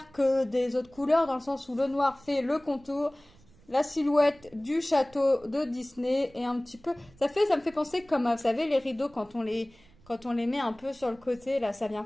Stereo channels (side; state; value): right; noise; rumble, 27 dB below the sound